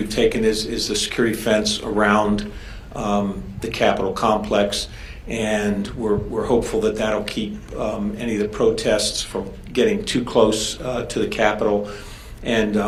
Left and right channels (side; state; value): both; identical; correlation 1.00